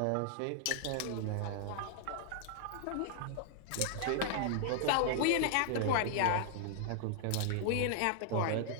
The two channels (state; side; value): different; both; correlation -0.01